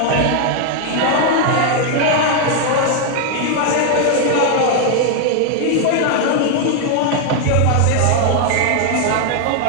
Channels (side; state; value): both; different; correlation 0.00